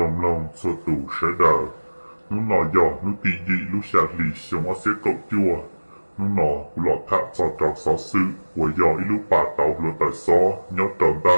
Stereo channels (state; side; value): inverted; both; correlation -1.00